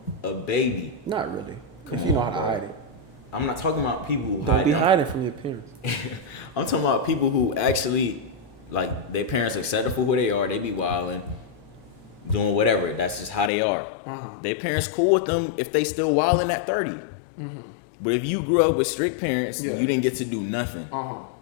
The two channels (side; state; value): right; drops out; at 13.5 s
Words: a baby. Not really. If you know how to hide it. I'm not talking about people who don't be hiding from your parents. I'm talking about people who actually, like, their parents accept them for who they are. They be wilding, doing whatever. That's just how they are. Their parents cool with them if they still wilding at 30. But if you grew up with strict parents, you didn't get to do nothing.